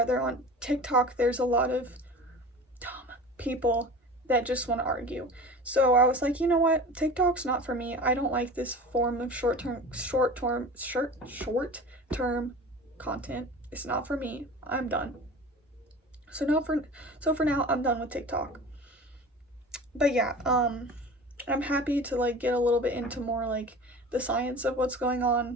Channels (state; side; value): normal; both; correlation 0.37